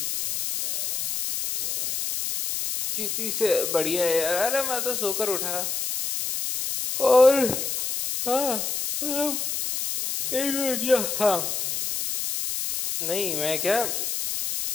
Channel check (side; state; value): left; noise; hiss, 2 dB below the sound